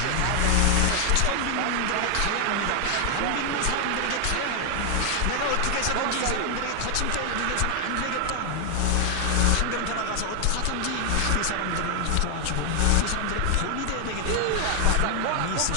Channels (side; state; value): both; different; correlation 0.00